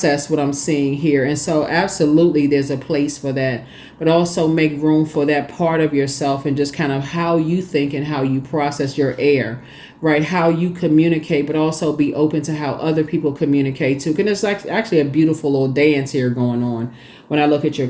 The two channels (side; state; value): both; identical; correlation 1.00